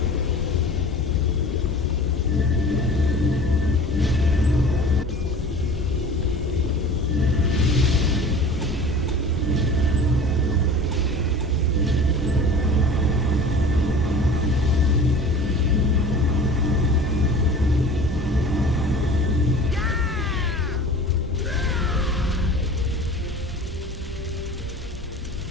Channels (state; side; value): normal; both; correlation 0.41